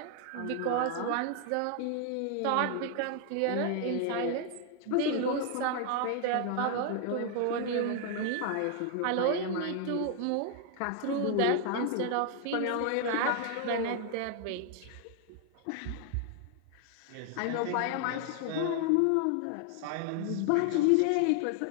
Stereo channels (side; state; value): both; different; correlation 0.00